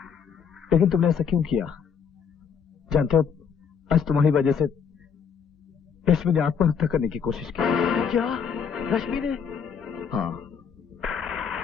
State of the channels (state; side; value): quieter; right; 6.9 dB